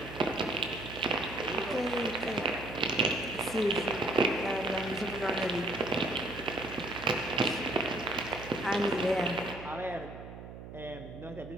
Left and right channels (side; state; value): right; noise; hum, 13 dB below the sound